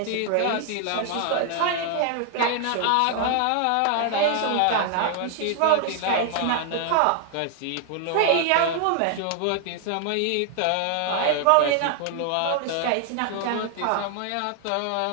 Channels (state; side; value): different; both; correlation 0.00